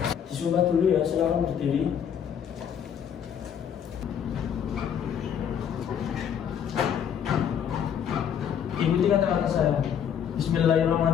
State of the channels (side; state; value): right; quieter; 8.5 dB